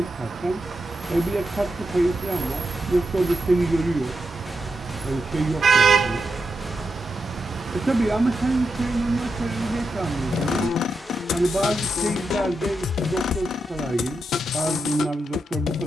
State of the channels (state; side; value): normal; both; correlation 0.86